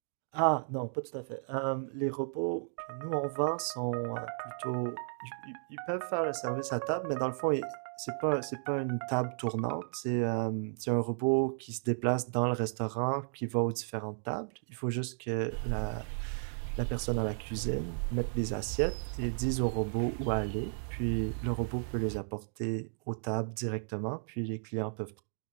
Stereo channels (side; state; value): left; silent; digital silence